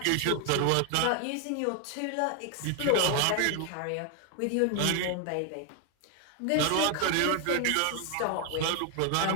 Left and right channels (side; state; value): both; different; correlation 0.01